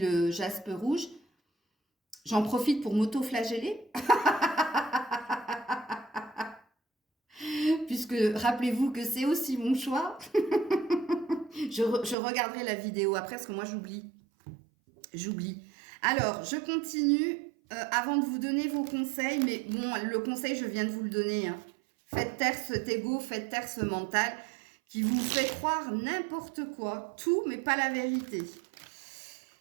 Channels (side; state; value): left; drops out; at 12.2 s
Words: jaspe rouge. J'en profite pour m'auto-flageller. Puisque, rappelez-vous que c'est aussi mon choix. je regarderai la vidéo après, parce que moi, j'oublie. Alors, je continue avant de vous donner vos conseils. Mais bon, le conseil, je viens de vous le donner. Hein. Faites taire cet ego, faites taire ce mental qui vous fait croire n'importe quoi, tout, mais pas la vérité.